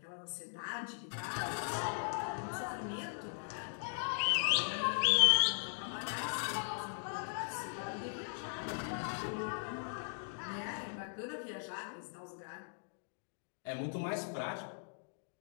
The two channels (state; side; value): silent; right; digital silence